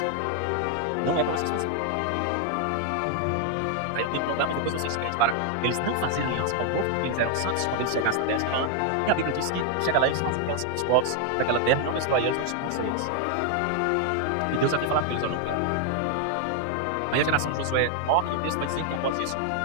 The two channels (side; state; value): both; different; correlation 0.00